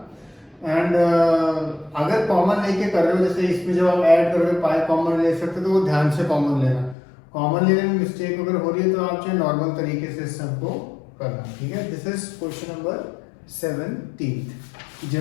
एंड अगर कॉमन लेके कर रहे हो, जैसे इसमें जब आप ऐड करोगे पाई कॉमन ले सकते हो तो वो ध्यान से कॉमन लेना. कॉमन लेने में मिस्टेक अगर हो रही है तो आप जो नॉर्मल तरीके से सबको करना, ठीक है. This is question number 17.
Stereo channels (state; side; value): drops out; right; at 7.0 s